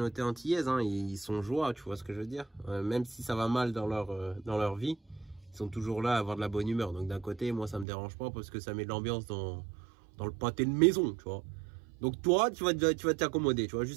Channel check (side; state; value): left; drops out; at 7.9 s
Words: antillaise, hein, ils sont joie, tu vois ce que je veux dire, même si ça va mal dans leur vie, ils sont toujours là à avoir de la bonne humeur. Donc d'un côté, moi ça me dérange pas parce que ça met de l'ambiance dans le pâté de maison, tu vois. Donc toi, tu vas t'accommoder, tu vois.